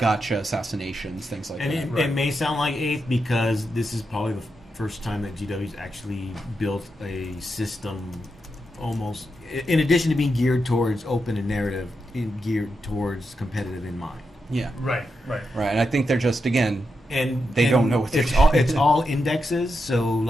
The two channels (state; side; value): normal; both; correlation 0.86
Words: assassinations, things like And that. it may sound like 8th because this is probably the first time that GW's actually built a system almost, in addition to being geared towards open and narrative, geared towards competitive in mind. Yeah. Right. Right. And I think they're just again And They don't know what they're it's doing. all, it's all indexes. So